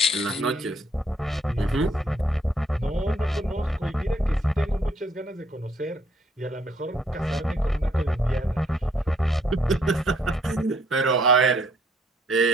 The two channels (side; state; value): both; normal; correlation 0.68